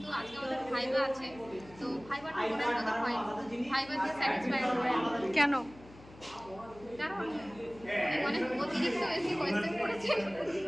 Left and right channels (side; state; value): left; noise; hum, 21 dB below the sound